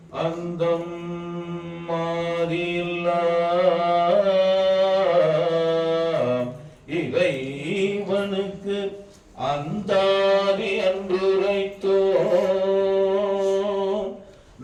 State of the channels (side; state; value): both; identical; correlation 1.00